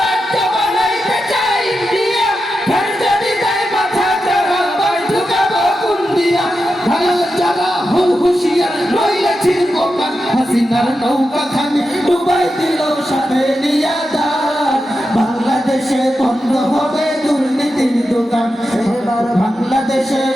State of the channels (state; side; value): normal; both; correlation 0.89